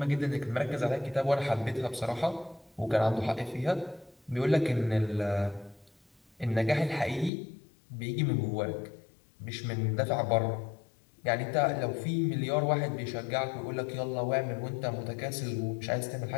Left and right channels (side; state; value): right; drops out; at 7.3 s